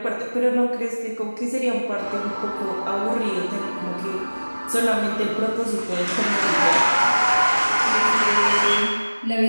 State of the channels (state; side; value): inverted; both; correlation -1.00